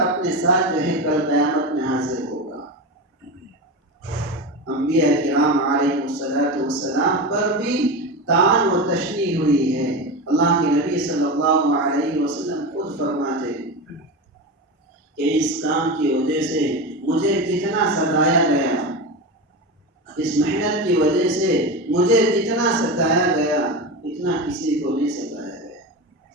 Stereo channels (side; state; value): both; normal; correlation 0.22